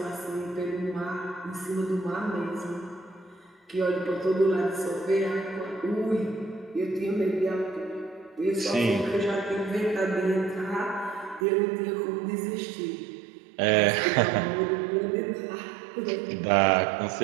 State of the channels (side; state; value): left; drops out; at 11.5 s